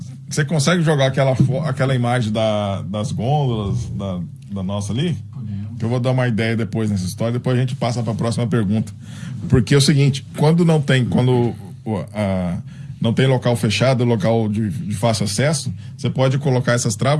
Você consegue jogar aquela imagem das gôndolas da nossa ali? Que eu vou dar uma ideia depois nessa história, depois a gente passa para a próxima pergunta. Porque é o seguinte, quando não tem local fechado, local de fácil acesso, você pode colocar essas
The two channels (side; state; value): both; identical; correlation 1.00